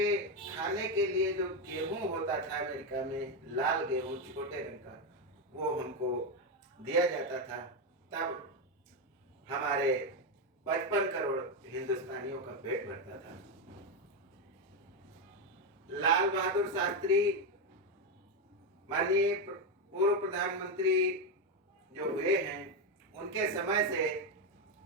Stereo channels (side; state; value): both; normal; correlation 0.08